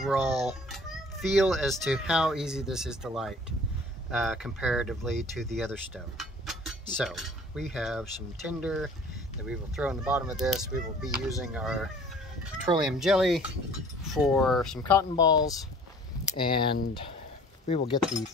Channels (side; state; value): both; normal; correlation 0.50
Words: feel as to how easy this is to light comparatively to the other stove. So we have some tinder that we will throw in the bottom of this. We will be using our petroleum jelly for some cotton balls, and we will get the